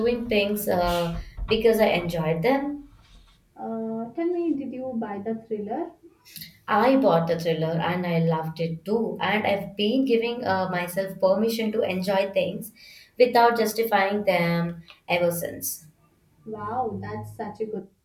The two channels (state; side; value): identical; both; correlation 1.00